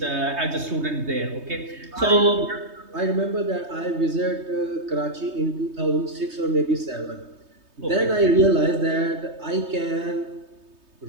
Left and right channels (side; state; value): left; late; 3.2 ms